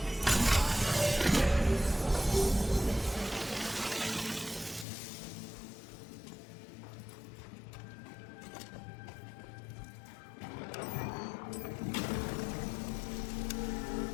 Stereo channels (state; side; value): drops out; right; at 4.9 s